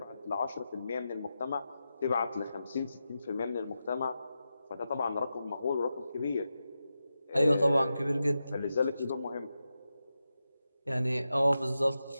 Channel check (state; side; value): inverted; both; correlation -0.90